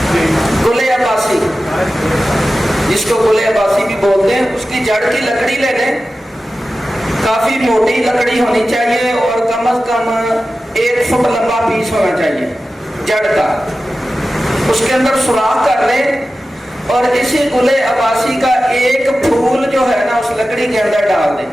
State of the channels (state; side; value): normal; both; correlation 0.94